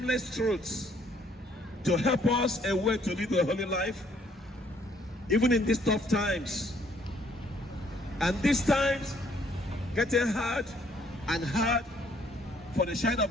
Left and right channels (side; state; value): both; normal; correlation 0.65